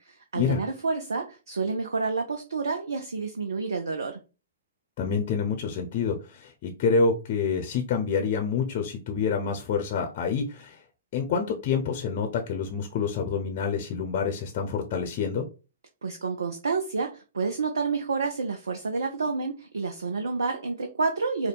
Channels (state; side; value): inverted; both; correlation -0.40